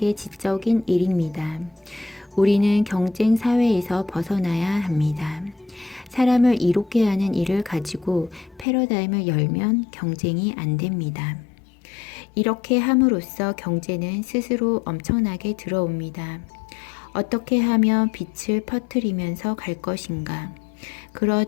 지적인 일입니다. 우리는 경쟁 사회에서 벗어나야 합니다. 사람을 이롭게 하는 일을 가지고 패러다임을 열면 경쟁이 안 됩니다. 이렇게 함으로써 경제는 스스로 엄청나게 들어옵니다. 어떻게 하면 빛을 퍼뜨리면서 갈 것인가? 그런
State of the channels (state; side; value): drops out; right; at 8.7 s